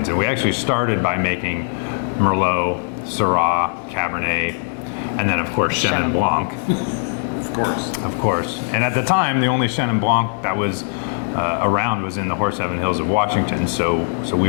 And we actually started by making Merlot, Syrah, Cabernet, and then of course Chenin Blanc. Of course. And at the time, the only Chenin Blanc that was around was in the Horseheaven Hills of Washington. So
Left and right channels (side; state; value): right; silent; digital silence